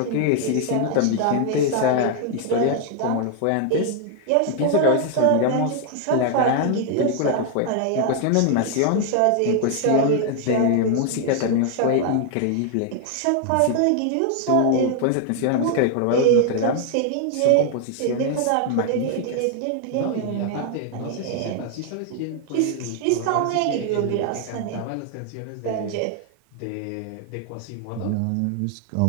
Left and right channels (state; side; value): different; both; correlation 0.00